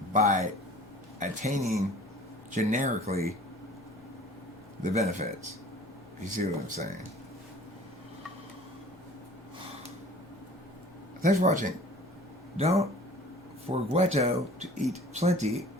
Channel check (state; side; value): normal; both; correlation 0.46